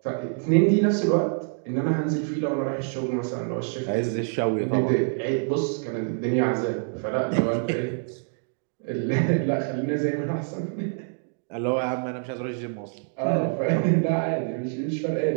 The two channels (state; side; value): silent; left; 60 dB below the other